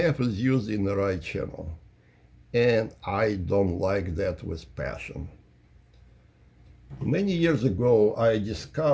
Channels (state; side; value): identical; both; correlation 1.00